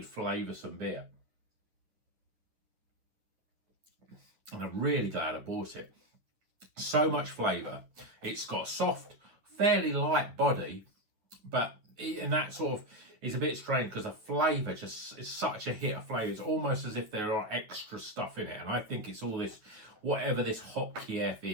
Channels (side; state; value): left; late; 9.7 ms